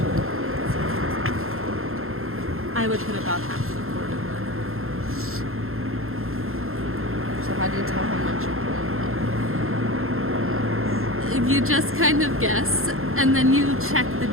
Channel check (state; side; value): late; left; 0.61 ms